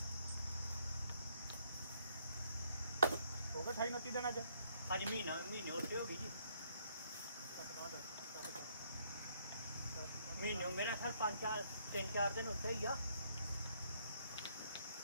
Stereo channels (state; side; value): inverted; both; correlation -0.69